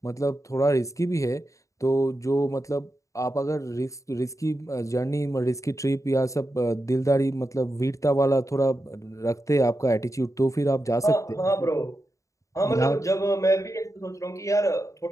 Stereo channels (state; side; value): late; right; 0.15 ms